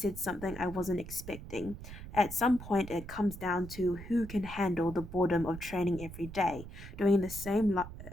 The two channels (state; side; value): noise; right; rumble, 12 dB below the sound